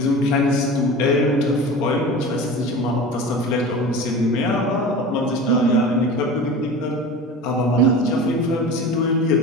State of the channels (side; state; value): both; normal; correlation 0.34